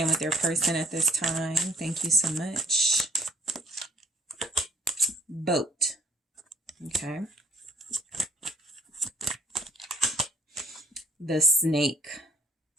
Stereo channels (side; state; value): both; normal; correlation 0.57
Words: with their person at this time? Thank you so much. Boat. Okay. The Snake.